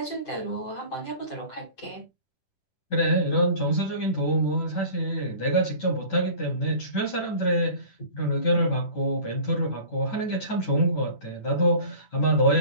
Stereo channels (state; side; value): late; right; 10 ms